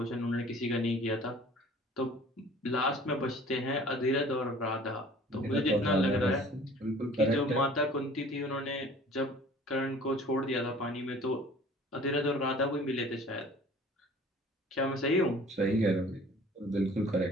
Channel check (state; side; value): normal; both; correlation 0.49